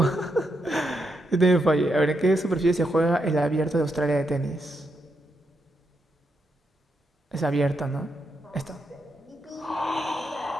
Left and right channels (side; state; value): both; normal; correlation 0.82